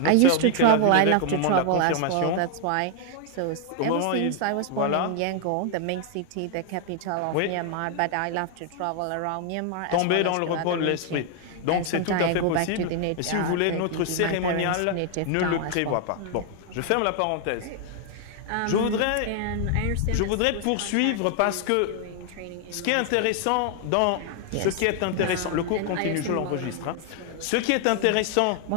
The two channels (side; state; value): both; different; correlation 0.00